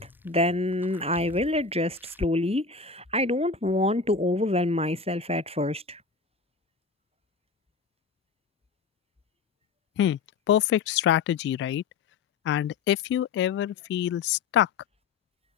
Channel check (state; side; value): quieter; right; 4.7 dB